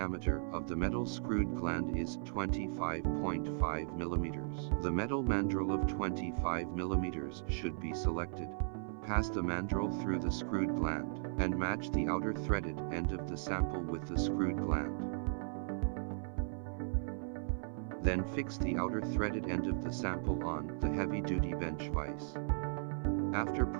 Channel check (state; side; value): silent; left; 53 dB below the other